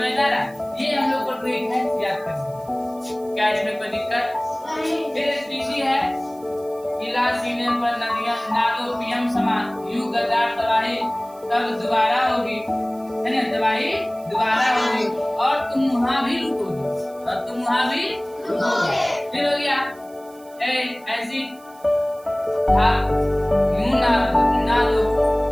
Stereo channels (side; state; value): right; noise; hiss, 26 dB below the sound